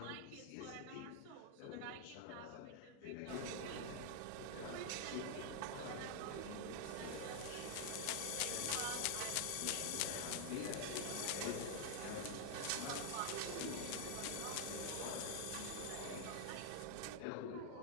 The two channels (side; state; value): both; different; correlation 0.00